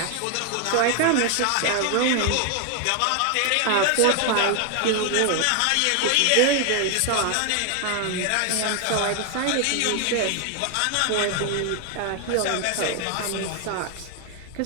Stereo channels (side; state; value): both; different; correlation 0.01